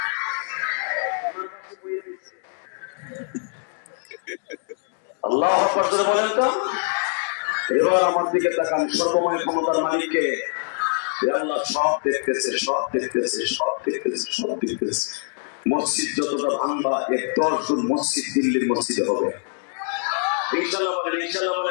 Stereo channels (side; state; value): right; silent; 55 dB below the other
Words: আল্লাহু আকবার জোরে বলেন তো। এবার আমার দিকে তাকান, সর্বময় ক্ষমতার মালিককে। আল্লাহ সব দেখতেছে, সব দেখতেছে, সব দেখতেছে, সব দেখতেছে। মসজিদ যতটা ভাঙবা, 10 গুণ মসজিদ দিল্লির মসজিদে হবে। ইনশাআল্লাহ বলেন, ইনশাআল্লাহ